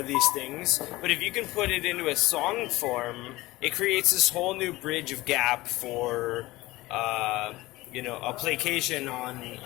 these things, but if you can put it into a song form, it creates this whole new bridge of gap for a placation on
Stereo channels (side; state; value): right; quieter; 19.2 dB